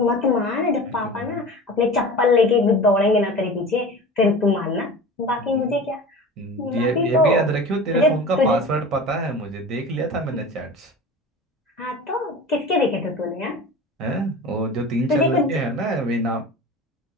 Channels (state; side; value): normal; both; correlation 0.35